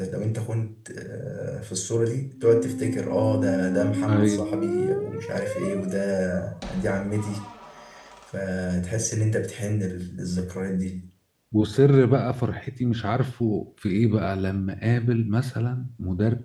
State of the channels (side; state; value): both; identical; correlation 1.00